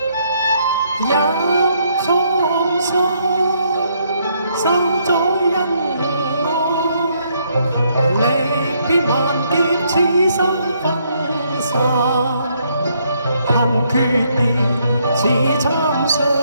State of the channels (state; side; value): inverted; both; correlation -0.72